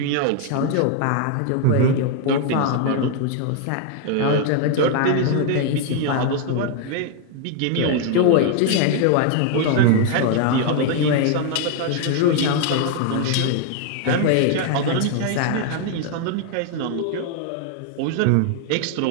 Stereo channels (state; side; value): different; both; correlation 0.00